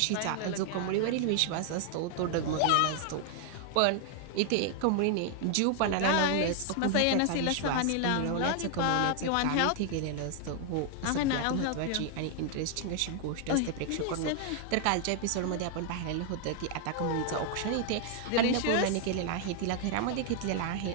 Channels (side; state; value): both; different; correlation 0.00